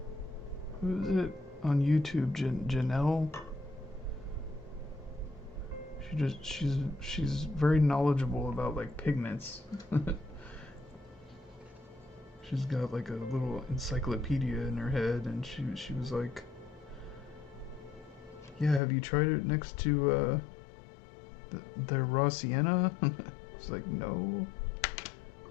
who is it on YouTube? Janelle. She's very knowledgeable about like pigments. She's got like a little encyclopedia in her head, and she was like, "Yeah, have you tried it next to the raw sienna?" It's like, "No."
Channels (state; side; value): drops out; right; at 18.8 s